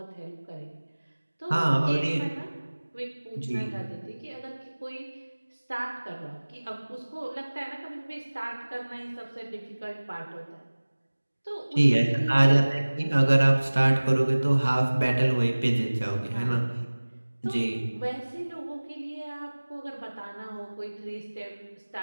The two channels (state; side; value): inverted; both; correlation -1.00